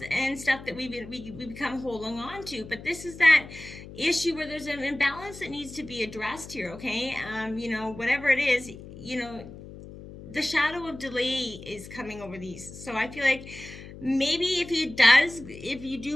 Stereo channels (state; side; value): noise; left; hum, 15 dB below the sound